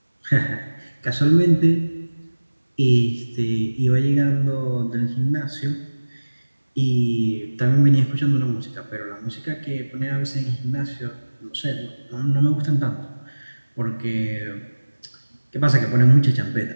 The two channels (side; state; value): both; inverted; correlation -1.00